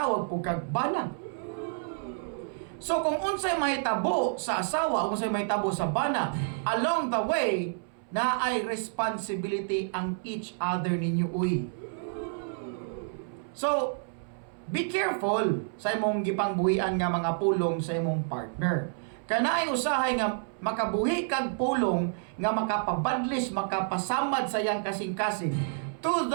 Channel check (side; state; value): left; silent; 58 dB below the other